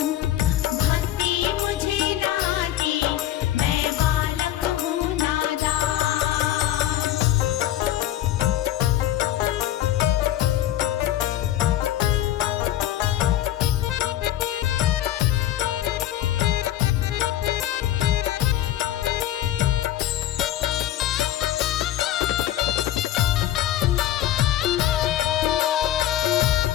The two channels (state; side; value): quieter; right; 12.9 dB